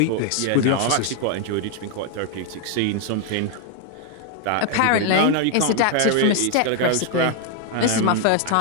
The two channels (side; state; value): both; different; correlation 0.00